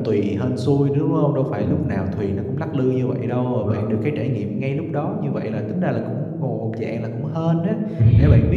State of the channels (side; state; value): both; identical; correlation 1.00